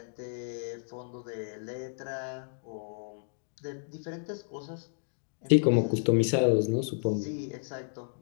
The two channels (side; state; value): right; silent; digital silence